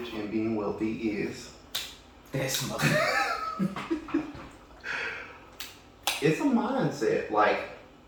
and being wealthy is... This mother... It's a mindset. Like,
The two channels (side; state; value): both; identical; correlation 1.00